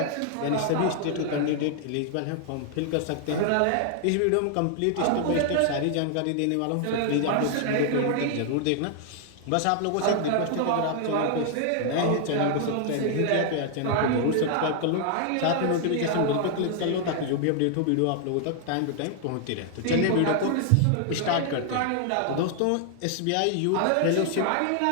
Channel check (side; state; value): both; different; correlation 0.00